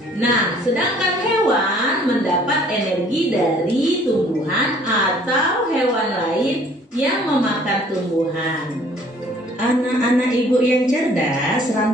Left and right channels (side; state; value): both; normal; correlation 0.57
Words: Nah, sedangkan hewan mendapat energi dari tumbuhan atau hewan lain yang memakan tumbuhan. Anak-anak ibu yang cerdas,